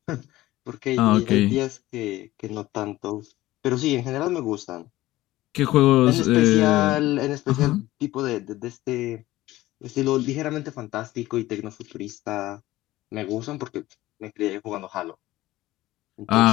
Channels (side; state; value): right; quieter; 16.8 dB